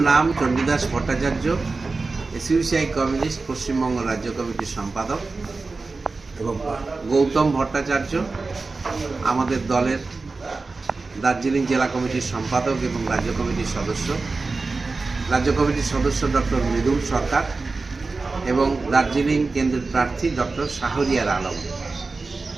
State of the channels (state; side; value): quieter; left; 3.8 dB